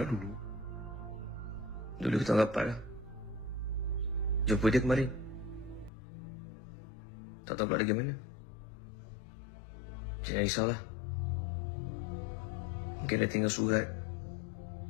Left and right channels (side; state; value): right; drops out; at 5.9 s